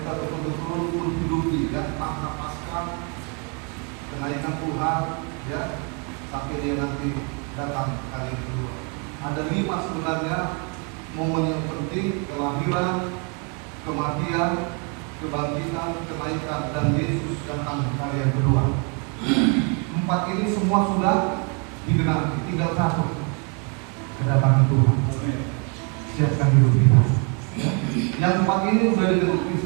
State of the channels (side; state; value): left; quieter; 35.8 dB